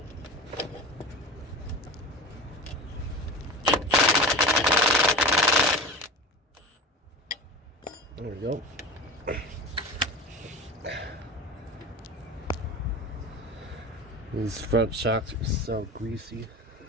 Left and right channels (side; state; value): both; normal; correlation 0.30